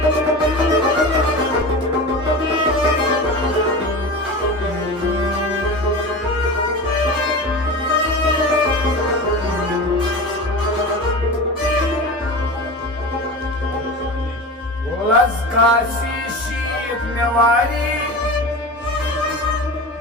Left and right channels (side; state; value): both; normal; correlation 0.29